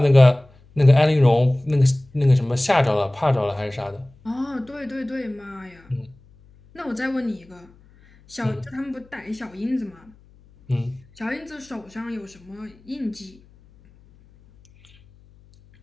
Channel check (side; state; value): left; noise; hum, 28 dB below the sound